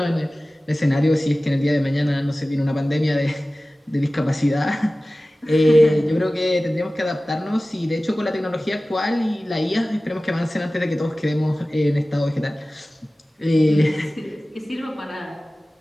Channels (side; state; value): both; normal; correlation 0.97